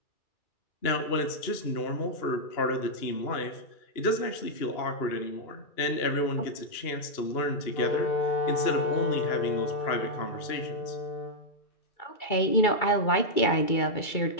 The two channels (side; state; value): right; late; 2.3 ms